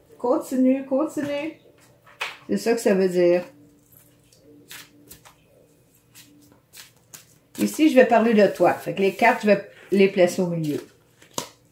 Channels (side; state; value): both; identical; correlation 1.00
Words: Continue. C'est ça que ça veut dire. Ici, je vais parler de toi. Fait que les cartes, je vais les placer au milieu.